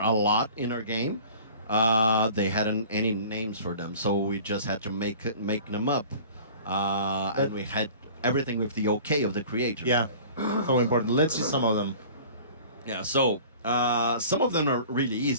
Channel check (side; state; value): both; inverted; correlation -0.44